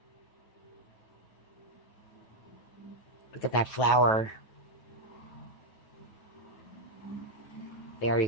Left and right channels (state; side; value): late; right; 9.3 ms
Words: Look at that flower. There